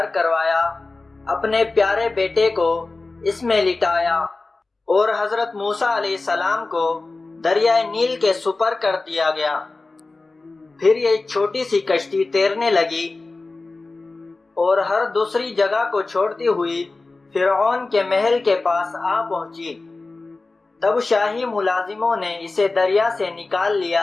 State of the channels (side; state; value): right; quieter; 3.5 dB